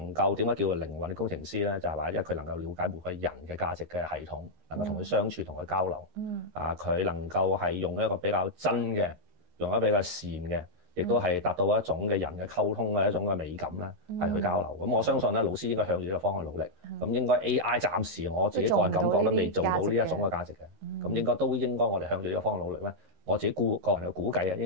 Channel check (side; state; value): left; late; 13 ms